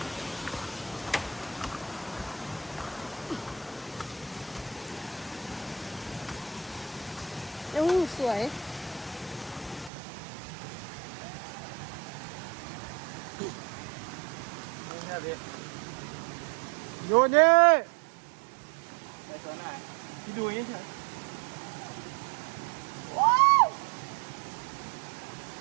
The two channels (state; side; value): drops out; left; at 9.9 s